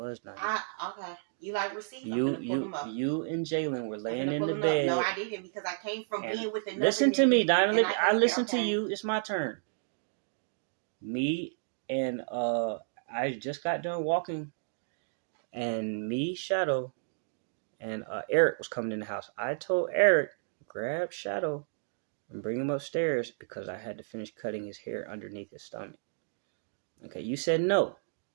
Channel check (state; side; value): silent; left; digital silence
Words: not. Okay. You like receipts? I'm gonna pull them up. You and Jalen were laying in the bed. No, I didn't because I came from being with another. Listen to me, Dinah. I listen to you. It's my turn. Me and I just got done walking, and me, Shadow, and Eric was coming in the house. I told Eric, grab Shadow and bring him upstairs because I had to finish cutting his hair underneath his stomach. Okay, you said no.